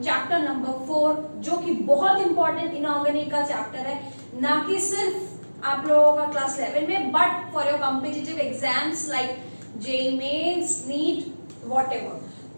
चैप्टर नंबर 4, जो कि बहुत इंपॉर्टेंट इनऑर्गेनिक का चैप्टर है, ना कि सिर्फ आप लोगों का क्लास 11 में, but for your competitive exams like JEE mains, NEET, whatever.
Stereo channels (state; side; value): inverted; both; correlation -1.00